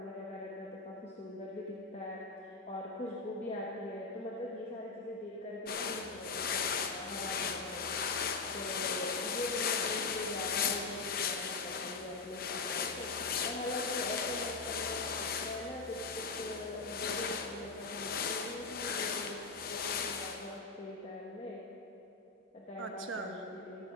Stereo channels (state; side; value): quieter; right; 4.3 dB